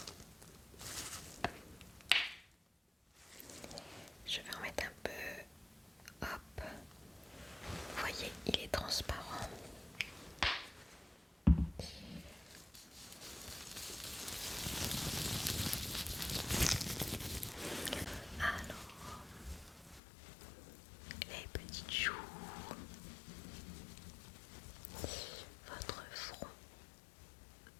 je vais en mettre un peu. Hop. Vous voyez, il est transparent. Alors, les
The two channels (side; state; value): right; drops out; at 20.0 s